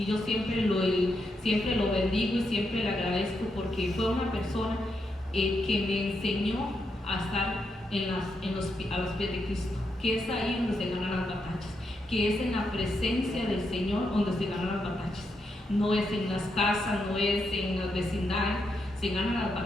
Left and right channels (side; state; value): both; normal; correlation 0.83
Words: yo siempre lo bendigo y siempre le agradezco porque fue una persona que me enseñó a estar a los pies de Cristo, que es ahí donde se ganan las batallas, que es en la presencia del Señor donde se ganan las batallas. No es en las casas, no es en las vecindades, se ganan las